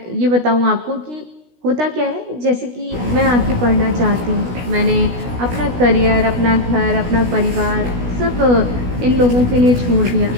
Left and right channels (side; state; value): left; late; 16 ms